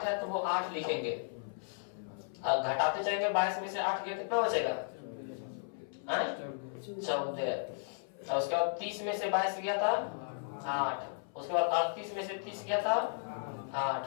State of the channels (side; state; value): right; silent; 55 dB below the other